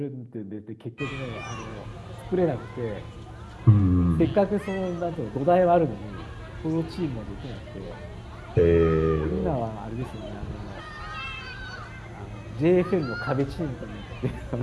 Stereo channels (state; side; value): identical; both; correlation 1.00